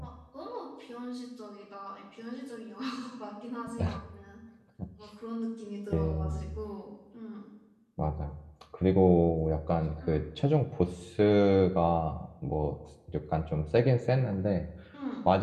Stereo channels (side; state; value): both; identical; correlation 1.00